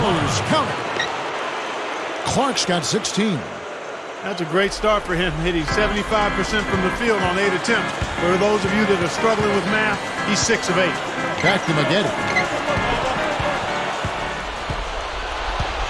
Count it. Clark's got 16. That's a great start for him, hitting 75% from the field on 8 attempts. For those of you that are struggling with math, he's 6 of 8. Back to Maggette.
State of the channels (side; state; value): both; identical; correlation 1.00